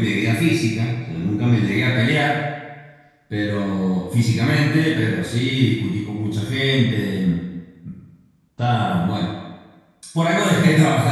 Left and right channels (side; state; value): both; identical; correlation 1.00